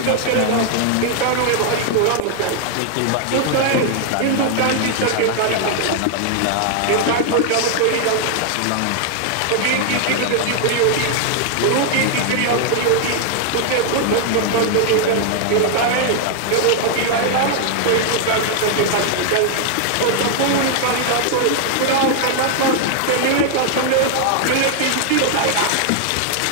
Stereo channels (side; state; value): both; different; correlation 0.00